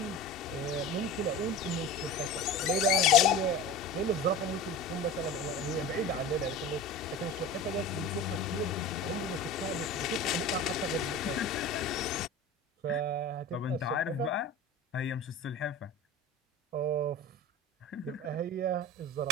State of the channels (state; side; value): normal; both; correlation 0.33